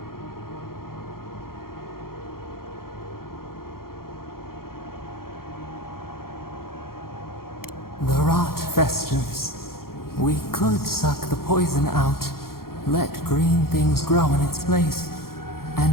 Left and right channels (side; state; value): right; late; 0.93 ms